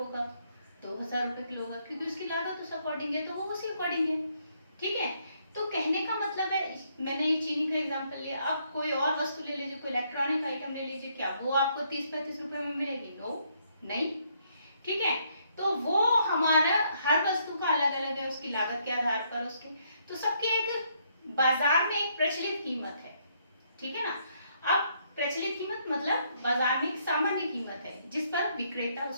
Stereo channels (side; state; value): both; inverted; correlation -0.71